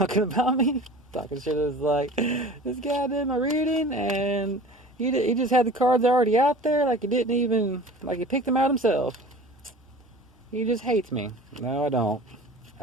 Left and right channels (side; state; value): both; normal; correlation 0.41